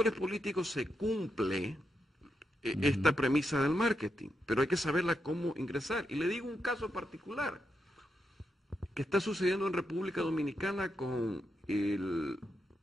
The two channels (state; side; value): normal; both; correlation 0.84